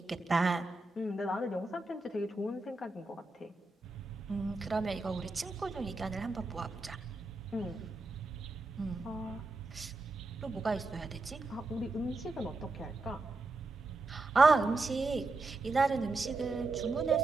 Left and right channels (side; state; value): left; quieter; 3.2 dB